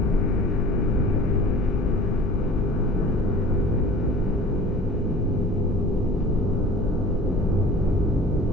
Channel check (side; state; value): both; normal; correlation 0.43